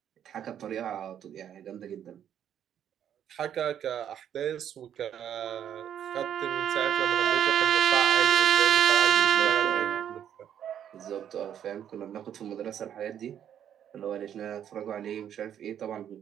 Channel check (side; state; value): left; quieter; 9.7 dB